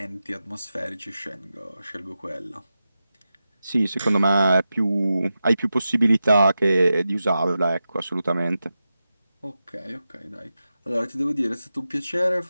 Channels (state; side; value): inverted; both; correlation -0.92